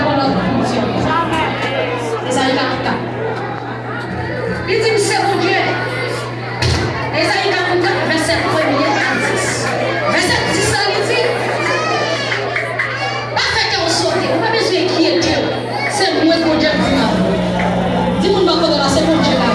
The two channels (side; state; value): both; identical; correlation 1.00